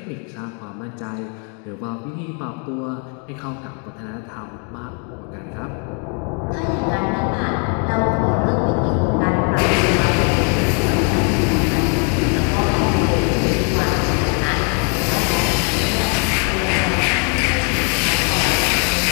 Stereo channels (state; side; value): quieter; right; 39.3 dB